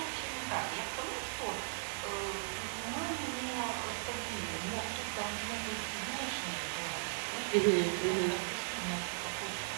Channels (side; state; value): left; silent; digital silence